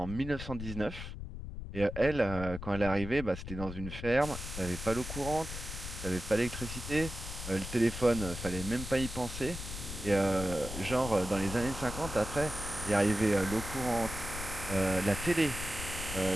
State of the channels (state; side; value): noise; left; rumble, 8 dB below the sound